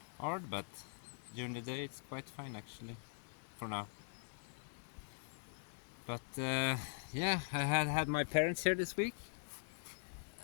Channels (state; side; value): silent; right; digital silence